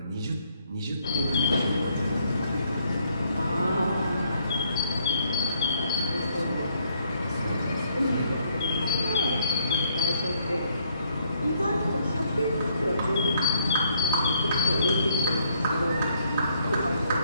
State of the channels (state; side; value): inverted; both; correlation -0.70